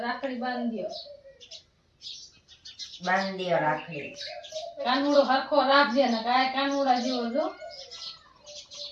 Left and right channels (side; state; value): both; identical; correlation 1.00